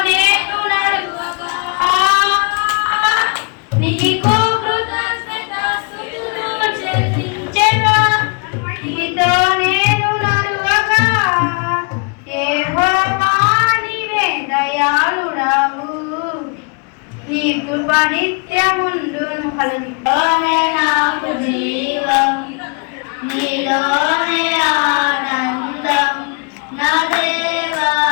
నేను నడువగా నీకు కృతజ్ఞతాస్తుతులు చెల్లించెదా. నీతో నేను నడువగా యెహోవా నీవే దయాళుడవు, నీ కృప నిత్యముండును. నీలోనే నాకు జీవం, నీలోనే ఆనందం, నా దేవా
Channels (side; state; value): right; quieter; 36.0 dB